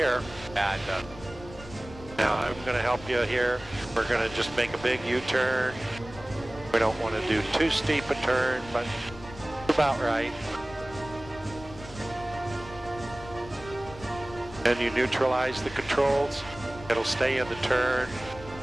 Yeah, it does. Now I'm going to help you here. We're going to just make a big U-turn. We don't want to do too steep a turn, but about right. Then you neutralize the controls. It'll stay in the turn.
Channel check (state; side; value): noise; left; rumble, 16 dB below the sound